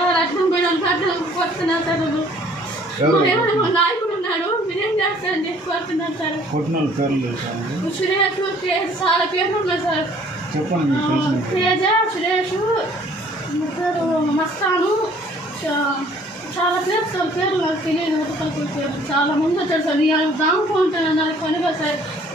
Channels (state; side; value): normal; both; correlation 0.57